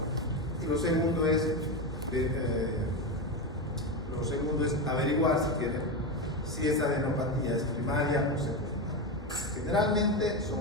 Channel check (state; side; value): normal; both; correlation 0.15